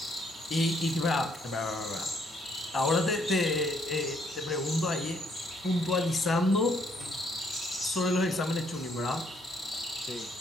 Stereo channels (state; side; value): normal; both; correlation 0.69